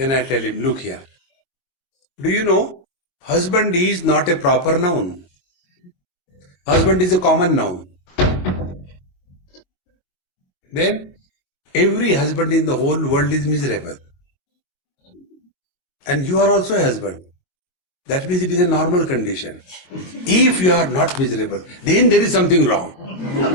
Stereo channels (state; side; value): late; right; 22 ms